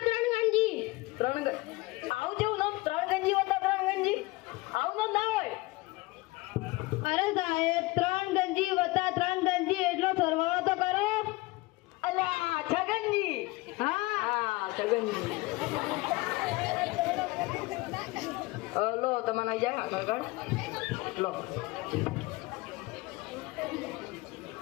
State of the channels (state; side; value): quieter; right; 21.8 dB